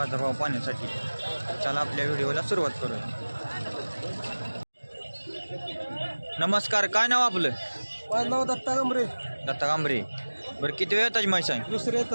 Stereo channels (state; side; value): inverted; both; correlation -1.00